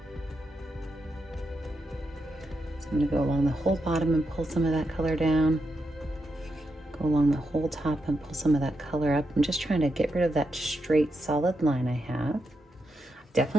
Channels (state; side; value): normal; both; correlation 0.85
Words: I'm going to go along the whole bottom and pull some of that color down. Go along the whole top and pull some of that color up. I'm just trying to get rid of that straight solid line I have.